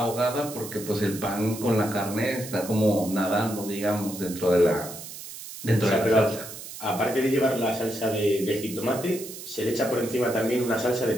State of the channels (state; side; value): noise; right; hiss, 12 dB below the sound